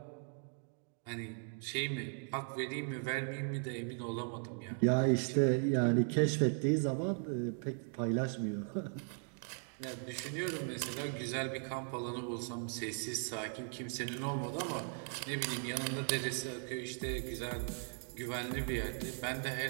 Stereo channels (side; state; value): left; silent; 52 dB below the other